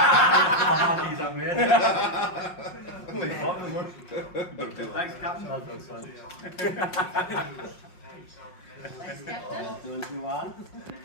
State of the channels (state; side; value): late; right; 5.5 ms